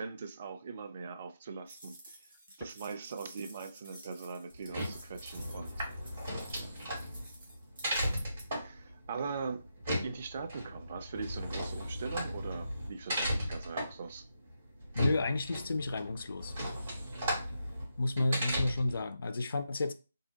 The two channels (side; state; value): both; inverted; correlation -0.83